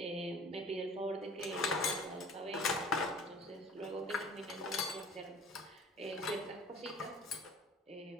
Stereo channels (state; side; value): normal; both; correlation 0.45